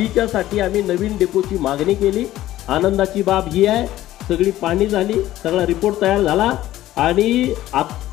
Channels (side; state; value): right; quieter; 14.6 dB